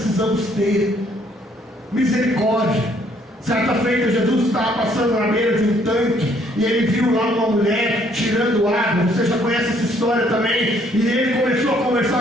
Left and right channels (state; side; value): normal; both; correlation 0.65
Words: ter. Misericórdia. Certa feita, Jesus estava passando na beira de um tanque e ele viu lá uma mulher tirando água. Você já conhece essa história também. E ele começou a